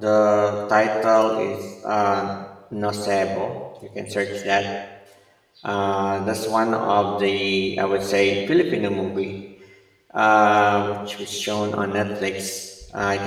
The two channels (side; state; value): both; identical; correlation 1.00